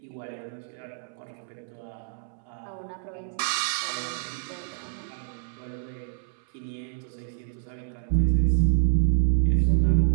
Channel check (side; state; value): left; silent; 60 dB below the other